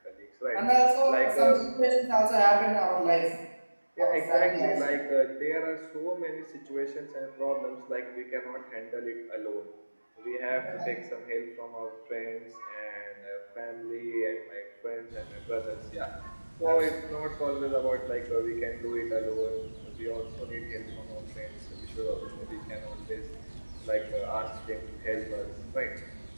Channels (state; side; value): inverted; both; correlation -1.00